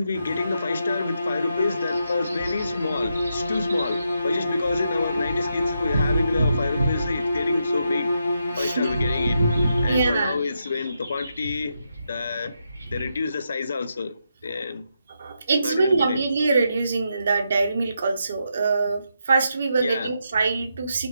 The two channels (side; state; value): both; inverted; correlation -0.82